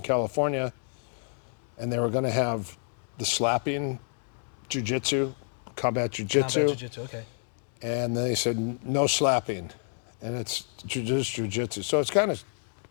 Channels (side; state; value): right; silent; 59 dB below the other